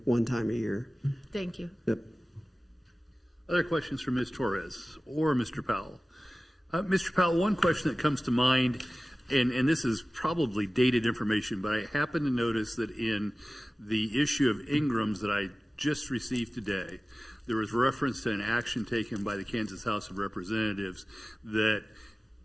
one time a year. Thank you. Yep. Other questions for Ms. Torres or Mr. Powell? Mr. Powell, one question that comes to mind, and this is probably dated information, but I happen to notice that in the issue of Ingram's that I just received today, there was reference to an action taken by the Kansas House of Representatives that,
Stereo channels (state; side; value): normal; both; correlation 0.97